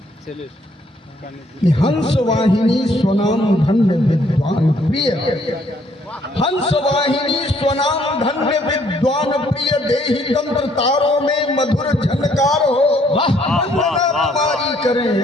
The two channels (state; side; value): normal; both; correlation 0.65